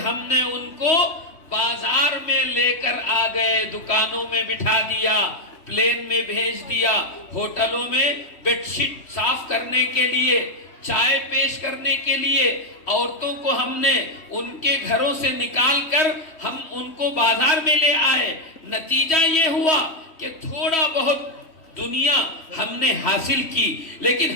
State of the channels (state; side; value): late; right; 3.1 ms